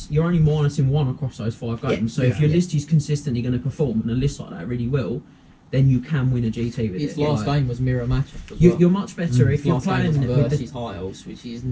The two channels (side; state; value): both; identical; correlation 1.00